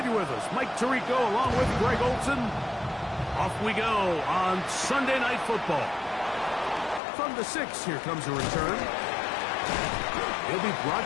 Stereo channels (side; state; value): right; drops out; at 7.0 s